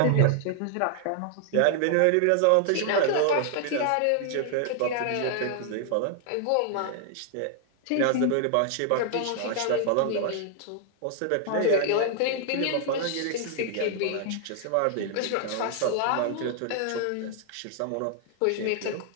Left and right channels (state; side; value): different; both; correlation -0.01